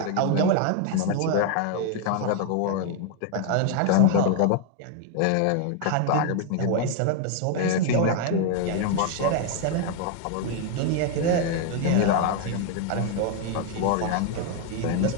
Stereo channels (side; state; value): both; different; correlation 0.00